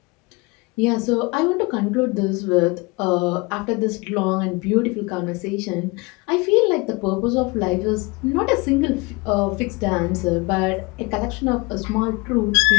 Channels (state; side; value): quieter; right; 26.2 dB